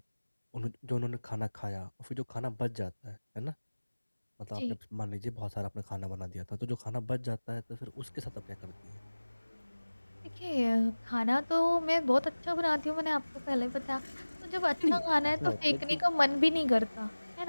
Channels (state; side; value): inverted; both; correlation -1.00